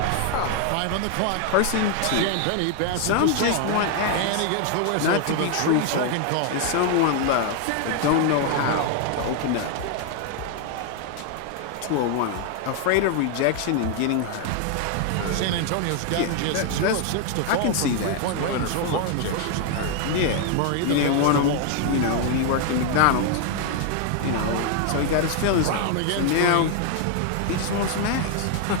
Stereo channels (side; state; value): both; different; correlation 0.00